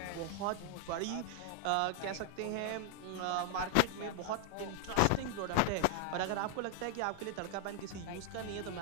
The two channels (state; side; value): different; both; correlation 0.00